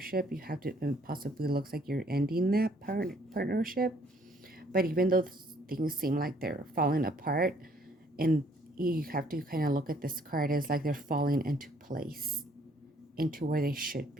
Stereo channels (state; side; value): normal; both; correlation 0.63